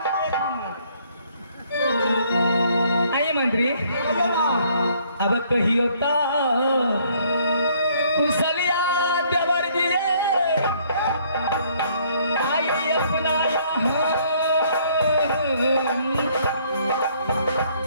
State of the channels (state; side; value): inverted; both; correlation -0.64